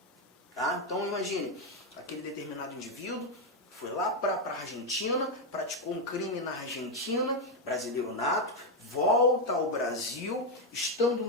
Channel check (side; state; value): both; normal; correlation 0.05